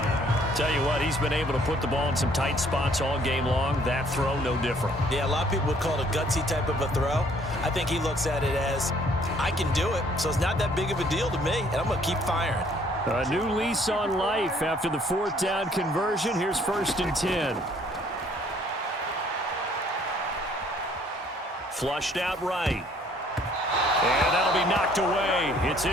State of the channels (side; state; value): both; normal; correlation 0.61